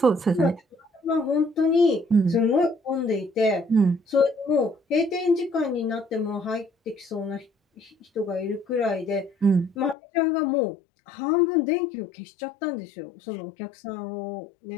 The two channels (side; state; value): right; drops out; at 10.0 s